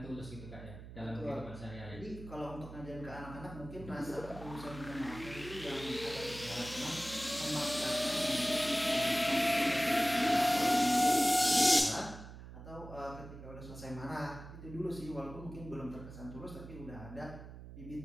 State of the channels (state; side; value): noise; right; hum, 13 dB below the sound